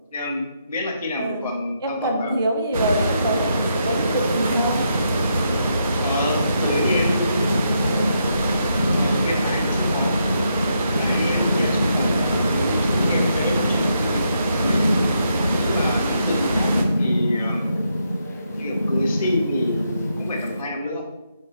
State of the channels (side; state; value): both; inverted; correlation -0.79